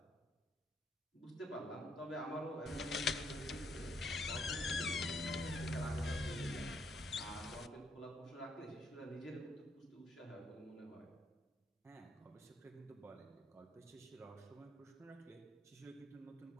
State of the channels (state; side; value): normal; both; correlation 0.72